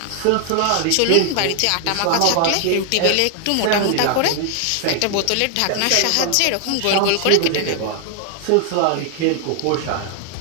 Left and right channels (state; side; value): different; both; correlation 0.00